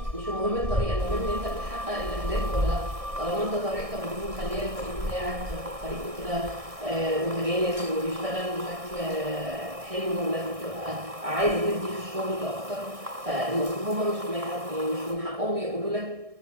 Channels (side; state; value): left; late; 1.6 ms